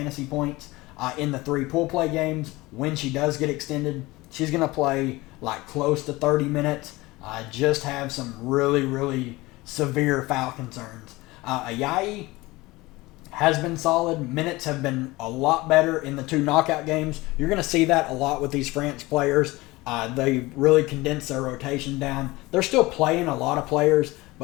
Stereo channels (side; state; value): right; quieter; 20.8 dB